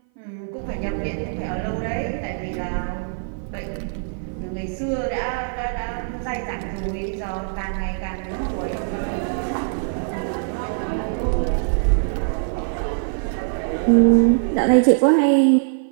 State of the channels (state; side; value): silent; left; 57 dB below the other